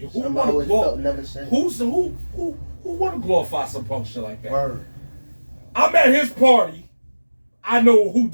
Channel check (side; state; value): both; inverted; correlation -1.00